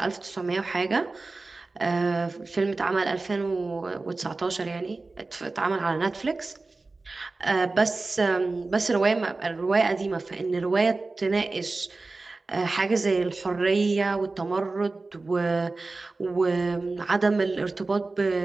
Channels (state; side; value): quieter; left; 3.5 dB